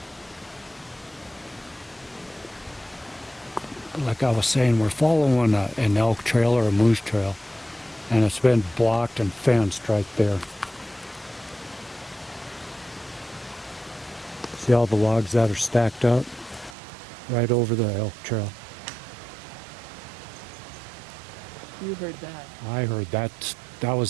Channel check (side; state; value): left; drops out; at 16.8 s